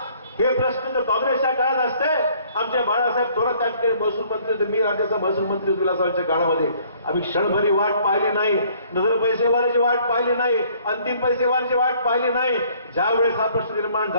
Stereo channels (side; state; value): both; inverted; correlation -0.60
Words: हे प्रश्न जर काँग्रेसच्या काळात असते, आमच्या बाळासाहेब थोरात त्याकडे महसूल मंत्री, मी राज्याचा महसूल मंत्री विलासरावांच्या काळामध्ये आम्ही क्षणभरी वाट पाहिली नाही, नजर पैसेवाल्याची वाट पाहिली नाही, अंतिम पैसेवाल्याची वाट पाहिली नाही. ज्यावेळेस हा प्रश्न निर्माण